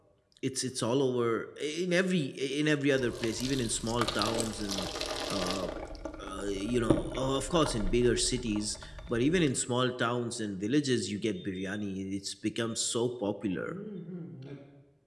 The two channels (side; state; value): both; identical; correlation 1.00